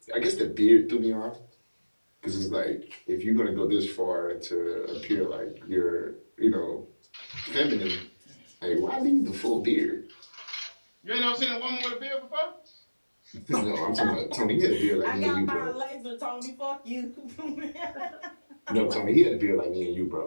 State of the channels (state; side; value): inverted; both; correlation -1.00